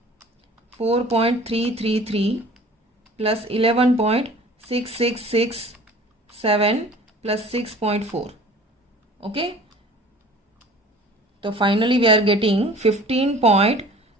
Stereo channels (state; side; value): normal; both; correlation 0.46